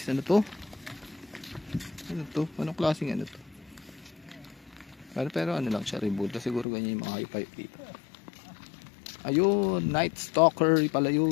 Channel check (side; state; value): right; drops out; at 6.7 s